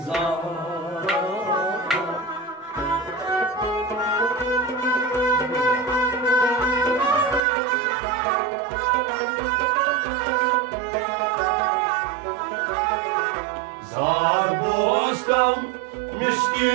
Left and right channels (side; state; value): left; drops out; at 7.4 s